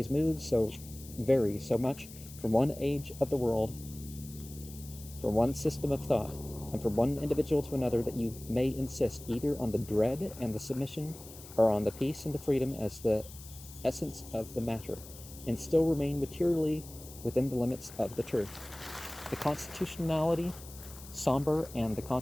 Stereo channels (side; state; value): left; noise; hiss, 17 dB below the sound